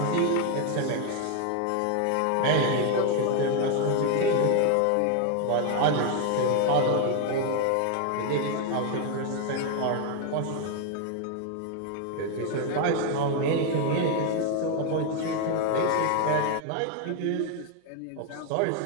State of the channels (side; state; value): both; different; correlation 0.01